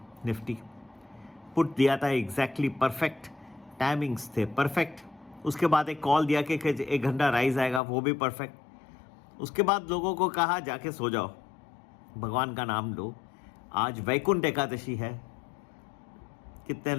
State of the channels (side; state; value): right; drops out; at 7.8 s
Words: निफ्टी। पुट दिया था एग्जैक्टली परफेक्ट, टाइमिंग्स थे परफेक्ट। उसके बाद एक कॉल दिया कि 1 घंटा राइज आएगा, वो भी परफेक्ट। उसके बाद लोगों को कहा जाके सो जाओ, भगवान का नाम लो। आज वैकुंठ एकादशी है। कितने